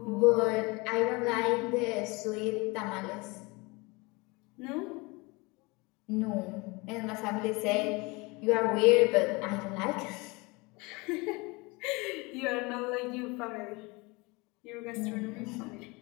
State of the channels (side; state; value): right; quieter; 25.8 dB